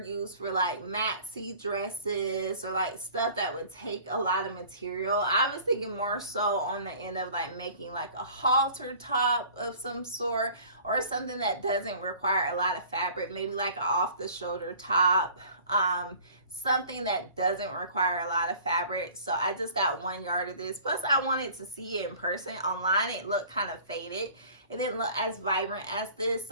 used for like maxi dresses or like stuff that would take a lot of material. I was thinking more so on the end of like making like a halter top of some sort, or something that doesn't require a lot of fabric, maybe like an off the shoulder top, something that doesn't require a lot of fabric. So I just got 1 yard of this. Plus I wanted to see it in person. Online it looked kind of faded. It didn't look as vibrant as this,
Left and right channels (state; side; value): inverted; both; correlation -0.48